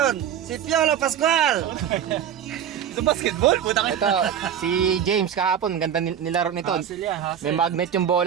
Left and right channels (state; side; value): quieter; left; 9.2 dB